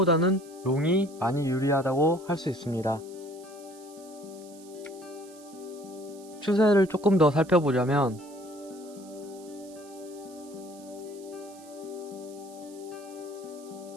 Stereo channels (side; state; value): right; noise; hiss, 22 dB below the sound